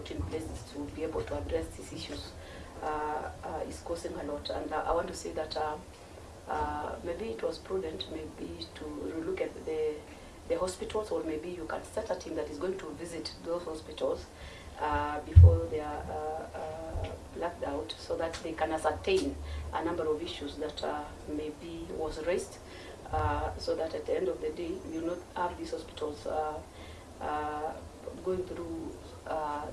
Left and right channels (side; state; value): both; identical; correlation 1.00